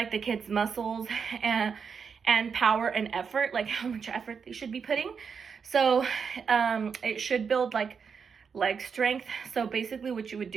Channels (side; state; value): left; quieter; 6.2 dB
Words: the kids' muscles and power and effort, like how much effort they should be putting. So it should build like leg strength. So basically what you would